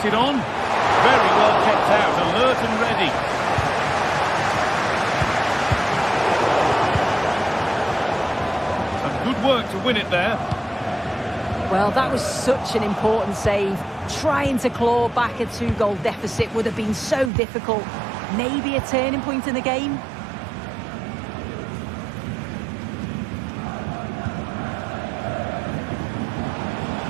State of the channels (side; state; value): left; drops out; at 17.3 s